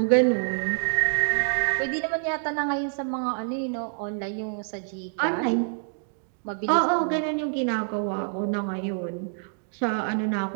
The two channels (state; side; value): silent; left; digital silence